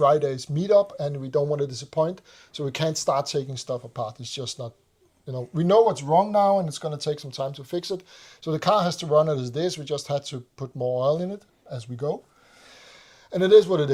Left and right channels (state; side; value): identical; both; correlation 1.00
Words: meetup, and we don't want to disappoint. So we can't start taking stuff apart. It's just not. We know what's wrong now, and it's going to take some time to fix it. So the car has to run it as this. We just had to put more oil in it as we go. And it is what it